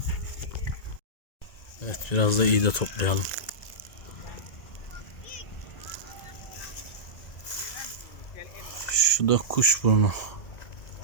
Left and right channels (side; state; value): right; late; 1.9 ms